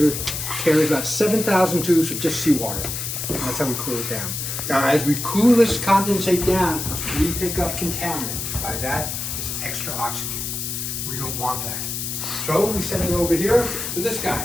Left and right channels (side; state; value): left; noise; hiss, 4 dB below the sound